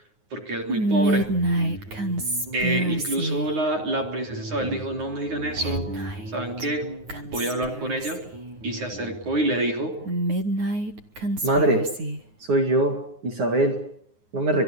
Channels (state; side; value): late; left; 9.5 ms